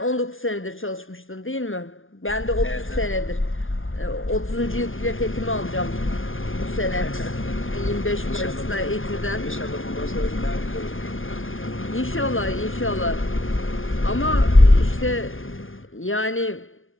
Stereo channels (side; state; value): right; late; 0.58 ms